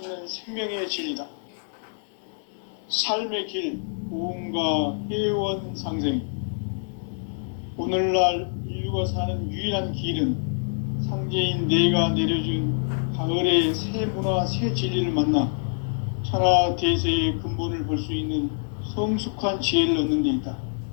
생명의 진리다. 삶의 길, 고음과 회원 상생. 오늘날 인류가 사는 유일한 길은 상제인 내가 내려준 가을의 새 문화, 새 진리를 만나 천하 대세의 근본을 볼 수 있는 성숙한 지혜를 얻는 데 있다.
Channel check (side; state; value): right; silent; digital silence